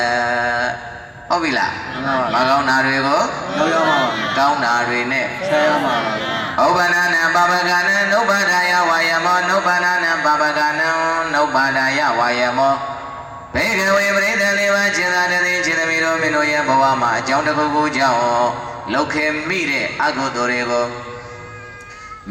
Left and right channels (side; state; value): both; identical; correlation 1.00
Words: ်ဟုတ်ပြီလားမကောင်းတာတွေကို ရောက်ရမှာပါ ကောင်းတာတွေနဲ့ ဆက်ရမှာပါ ဥပ္ပန္နနံပါပကနံနုပ္ပန္ဒာယဝါယမောနုပ္ပန္နနံပါပကနံနုပ္ပန္ဒာယဝါယမောဘေကဝေပရိသလေးပါခြေသာတည်းခြေသမီးတို့မင်းတို့ရဲ့ဘဝမှာအကြောင်းတစ်ခုခုကြောင့်လောက်ခဲ့မိတဲ့အကုသိုလ်တွေကိုမ